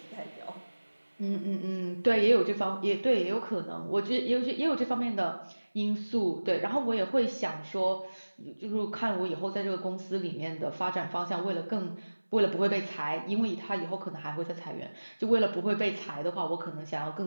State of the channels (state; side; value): inverted; both; correlation -1.00